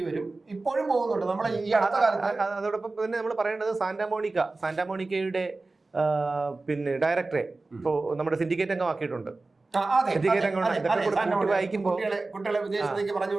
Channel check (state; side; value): quieter; left; 3.4 dB